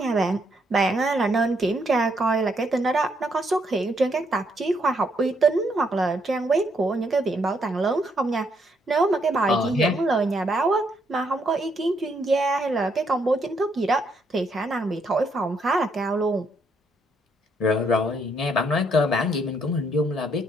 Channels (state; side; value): normal; both; correlation 0.73